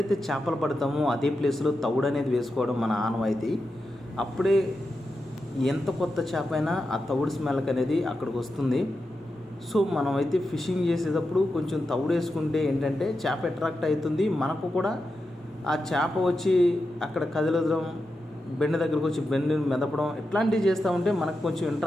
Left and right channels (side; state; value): both; normal; correlation 0.89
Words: చేపలు పడతామో అదే ప్లేస్లో తౌడు అనేది వేసుకోవడం మన ఆనవాయితీ. అప్పుడే ఎంత కొత్త చేప అయినా ఆ తౌడు స్మెల్కి అనేది అక్కడికి వస్తుంది. సో మనమైతే ఫిషింగ్ చేసేటప్పుడు కొంచెం తౌడు వేసుకుంటే ఏంటంటే చేప అట్రాక్ట్ అవుతుంది. మనకు కూడా ఆ చేప వచ్చి అక్కడ కదలడం, బెండ దగ్గరకు వచ్చి బెండని మెదపడం ఇట్లాంటివి చేస్తూ ఉంటే మనకు కొంచెం